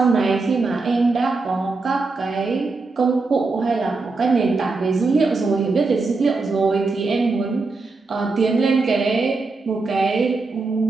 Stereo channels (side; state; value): left; quieter; 3.8 dB